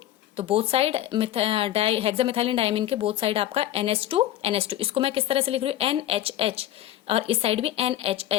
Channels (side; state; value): right; quieter; 13.0 dB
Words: तो बोथ साइड हेक्सामिथाइलिन डायमीन के बोथ साइड आपका NH2 इसको मैं किस तरह से लिख रही हूँ, NHH, और इस साइड भी